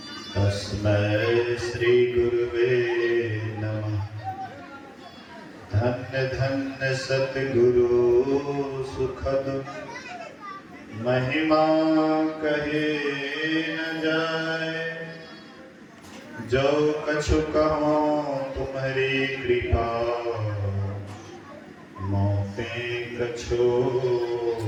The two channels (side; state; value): both; identical; correlation 1.00